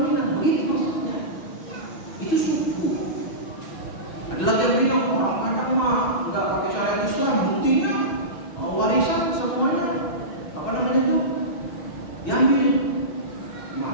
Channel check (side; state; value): right; late; 6.2 ms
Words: Minang. Begitu maksudnya. Itu suku. Ada lagi yang bilang orang Padang mah nggak pakai syariat Islam, buktinya warisan semuanya apa namanya itu diambil.